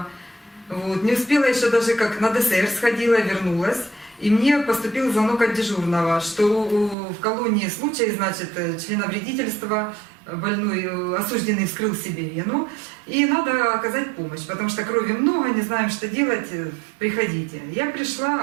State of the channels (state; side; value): drops out; left; at 7.0 s